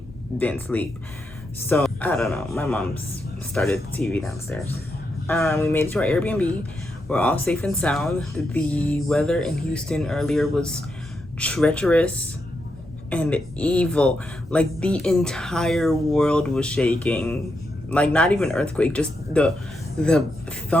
didn't sleep. So, I don't know. My mom's started the TV downstairs. We made it to our Airbnb. We're all safe and sound. The weather in Houston earlier was treacherous and evil. Like, the entire world was shaking. Like, not even earthquake, just the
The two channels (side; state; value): both; normal; correlation 0.83